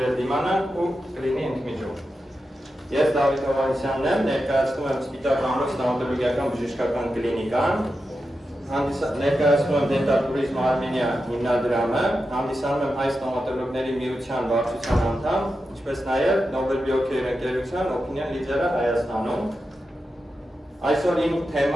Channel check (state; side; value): normal; both; correlation 0.90